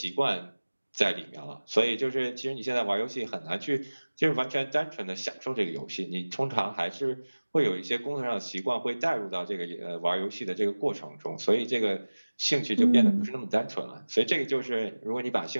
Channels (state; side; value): inverted; both; correlation -1.00